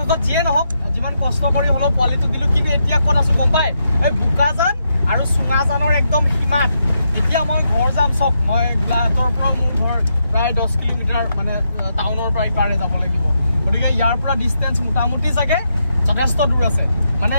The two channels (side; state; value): both; inverted; correlation -0.82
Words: যিয়ে নহওক যিমান কষ্ট কৰি হ'লেও পোৱালিটো দিলোঁ কিন্তু এতিয়া ক'ত আছোঁ গম পাই এই বোকাজান আৰু চুঙাজানৰ একদম সীমাত এতিয়া মই ঘৰ যাম চক মই গোলাঘাটৰ পৰা মোৰ ঘৰ প্ৰায় 10 কিলোমিটাৰ মানে টাউনৰ পৰা ইপাৰে যাব লাগিব গতিকে ইয়াৰ পৰা ডিষ্টেঞ্চ মোটামুটি চাগে যথেষ্ট দূৰ আছে মানে